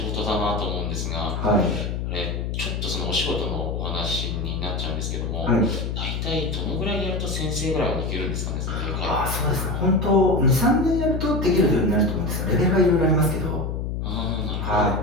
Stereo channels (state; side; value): noise; left; hum, 2 dB below the sound